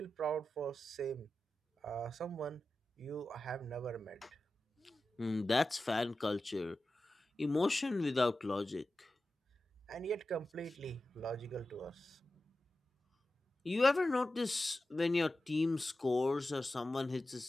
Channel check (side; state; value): both; normal; correlation 0.93